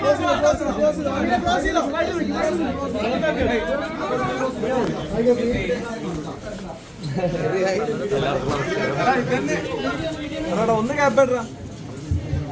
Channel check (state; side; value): identical; both; correlation 1.00